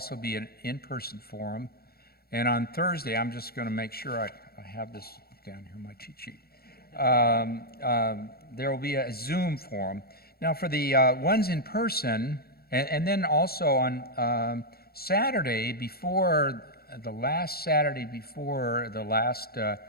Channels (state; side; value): late; right; 0.45 ms